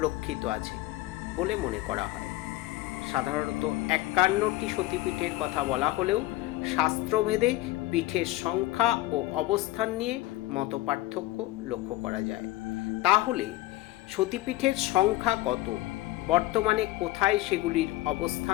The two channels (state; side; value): quieter; right; 16.9 dB